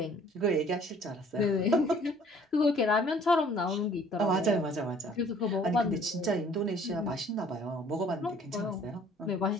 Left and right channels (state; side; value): normal; both; correlation 0.56